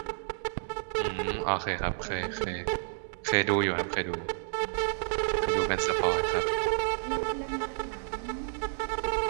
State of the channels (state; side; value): silent; left; 58 dB below the other